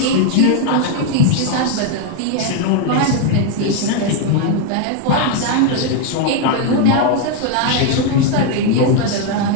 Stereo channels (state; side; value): different; both; correlation 0.01